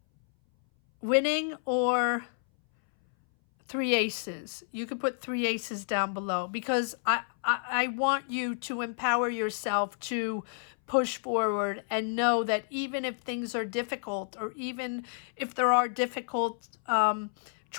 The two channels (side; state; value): right; silent; 58 dB below the other